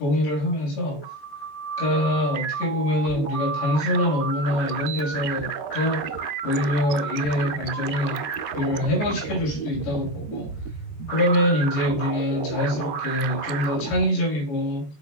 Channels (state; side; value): late; right; 14 ms